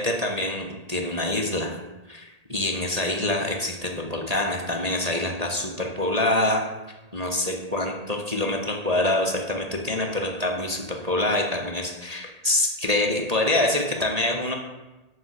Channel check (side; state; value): left; late; 1.8 ms